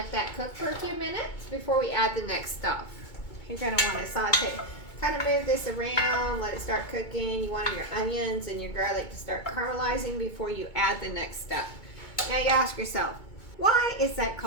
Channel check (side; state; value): right; late; 2.2 ms